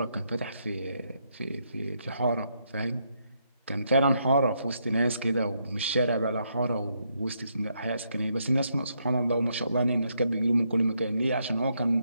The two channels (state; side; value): inverted; both; correlation -0.77